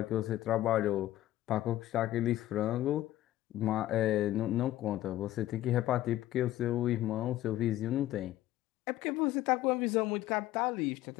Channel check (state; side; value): quieter; right; 14.5 dB